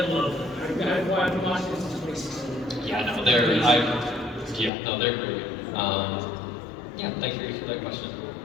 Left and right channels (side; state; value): right; drops out; at 4.7 s